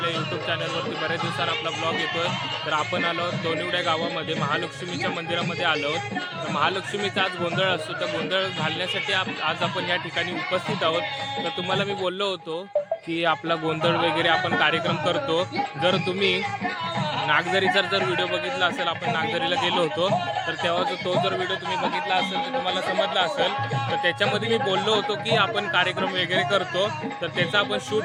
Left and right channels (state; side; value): identical; both; correlation 1.00